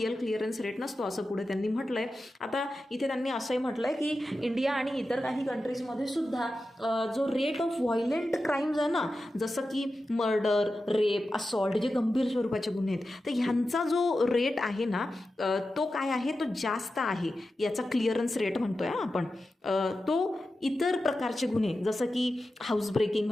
क्लिअरन्स रेट नसतो असं पुढे त्यांनी म्हटलं आहे. आता इथे त्यांनी असंही म्हटलं आहे की इंडिया आणि इतर काही कंट्रीजमध्ये सुद्धा जो रेट ऑफ व्हायलेंट क्राईम्स आहे ना, जसं की मर्डर, रेप, असॉल्ट, जे गंभीर स्वरूपाचे गुन्हे आहेत, तर ह्यांचा जो रेट आहे ना तो काय आहे, तो जास्त आहे. याचा क्लिअरन्स रेट म्हणतोय आपण. तो इतर प्रकारचे गुन्हे जसं की हाऊस ब्रेकिंग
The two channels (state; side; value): normal; both; correlation 0.92